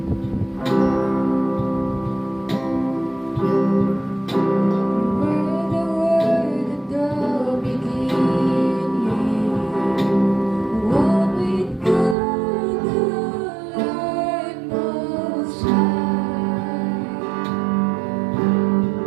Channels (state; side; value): drops out; left; at 12.2 s